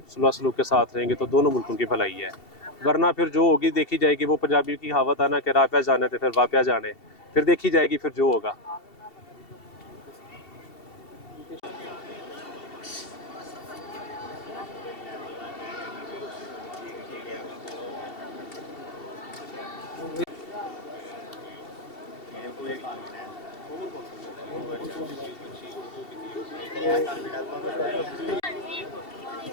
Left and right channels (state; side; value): late; right; 2.7 ms